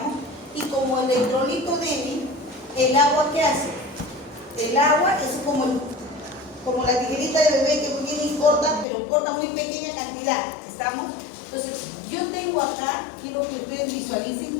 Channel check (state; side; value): drops out; right; at 8.8 s